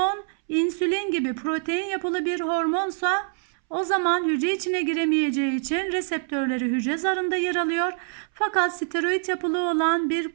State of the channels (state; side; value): silent; left; 62 dB below the other